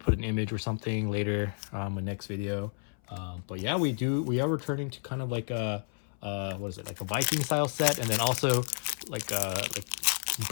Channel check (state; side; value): silent; right; 57 dB below the other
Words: an image or something later in the next video. But yeah, we are returning to kind of like a what is it, like a Viking style set, and then also like